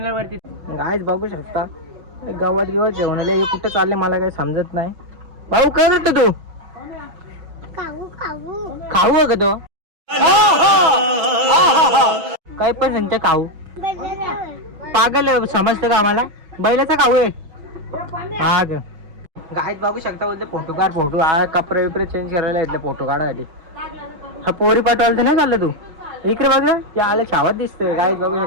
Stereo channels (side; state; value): left; late; 6.1 ms